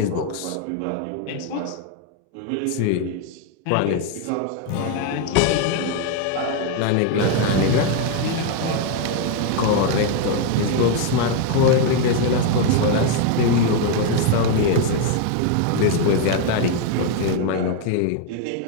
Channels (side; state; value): both; different; correlation 0.01